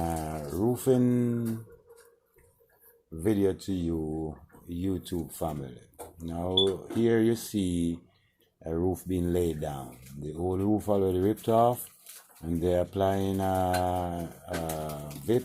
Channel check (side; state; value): both; identical; correlation 1.00